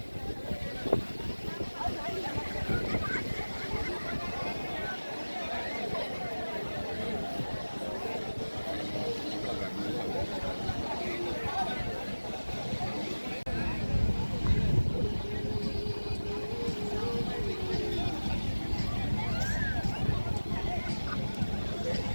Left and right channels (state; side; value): inverted; both; correlation -1.00